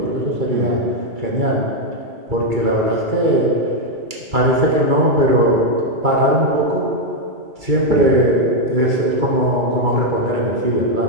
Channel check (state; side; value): late; left; 2.3 ms